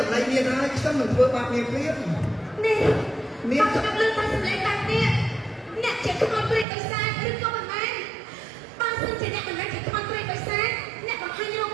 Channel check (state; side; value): drops out; left; at 6.7 s